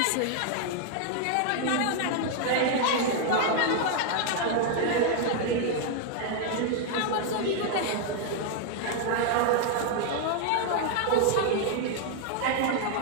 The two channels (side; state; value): both; different; correlation 0.00